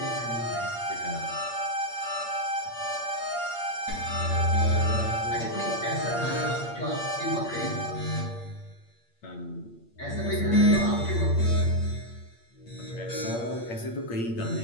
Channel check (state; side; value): late; right; 8.6 ms